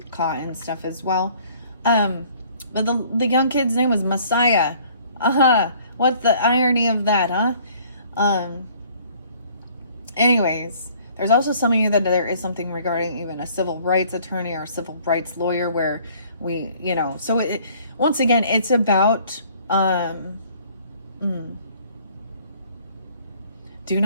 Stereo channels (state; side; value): inverted; both; correlation -0.57